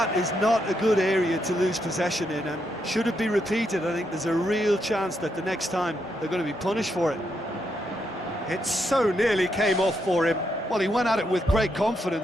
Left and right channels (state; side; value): normal; both; correlation 0.80